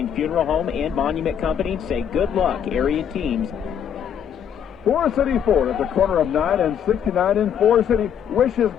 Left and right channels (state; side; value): quieter; right; 8.6 dB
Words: Funeral Home and Monument Company say good luck, area teams. Forest City Ford at the corner of 9 and 69 in Forest City wishes